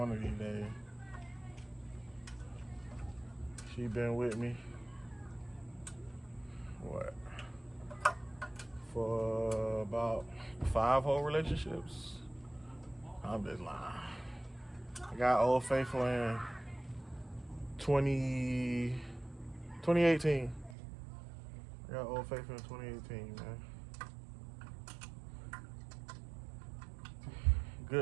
of these days. She been with me, what, for about 5 whole relationships? I'm just lying. I got Old Faithful in 2018. I got Old Faithful in 2018, man.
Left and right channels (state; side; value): drops out; left; at 20.8 s